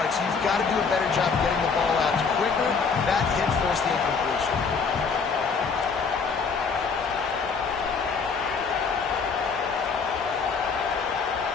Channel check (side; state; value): right; quieter; 5.3 dB